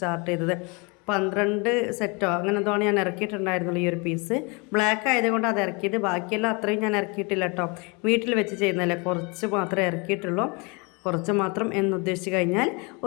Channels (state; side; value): quieter; right; 30.1 dB